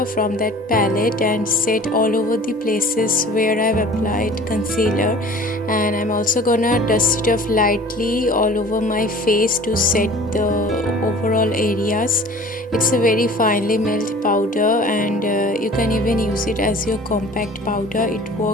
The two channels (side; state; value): both; normal; correlation 0.45